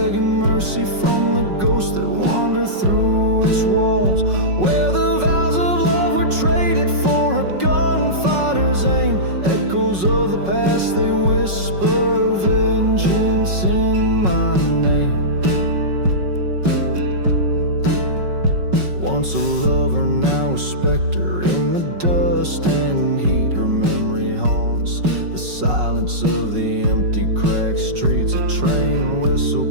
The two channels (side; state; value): left; late; 5.4 ms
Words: mercy from the ghosts that wander through its walls, where the vows of love were traded for a gunfighter's aim. Echoes of the past, they whisper vengeance in my name. Once a lover, now a specter in the dust and heat. Her memory haunts the silence of the empty cracked streets. A train